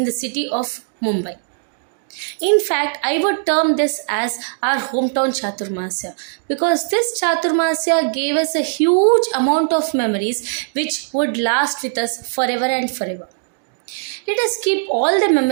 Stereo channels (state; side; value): silent; left; digital silence